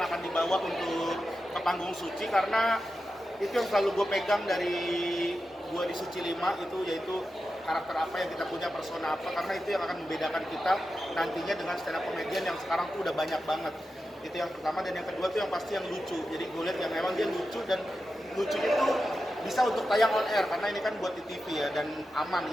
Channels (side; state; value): both; normal; correlation 0.90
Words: akan dibawa untuk ke panggung Suci, karena itu yang selalu gue pegang dari gue di Suci 5 itu, yaitu karakter apa yang kita punya, persona apa, karena itu yang akan membedakan kita nantinya dengan stand up comedian yang sekarang tuh udah banyak banget. Itu yang pertama. Dan yang kedua tuh yang pasti yang lucu. Jadi gue lihat yang memang dia lucu, dan lucunya tuh bisa untuk tayang on air karena ini kan buat di TV ya, dan aman